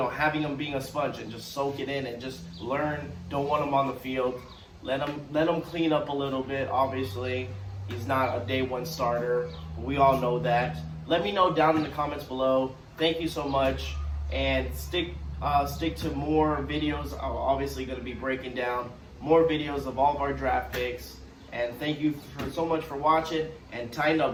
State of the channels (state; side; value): identical; both; correlation 1.00